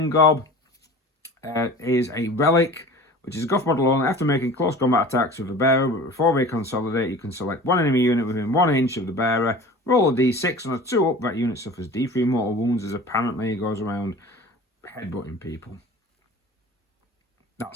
Gob is a relic, which is a Goth model only. After making close combat attacks with the bearer, but before they consolidate, you can select one enemy unit within 1 inch of the bearer, roll a d6, on a 2 up, that unit suffers d3 mortal wounds, as apparently it goes around headbutting people.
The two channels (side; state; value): both; normal; correlation 0.40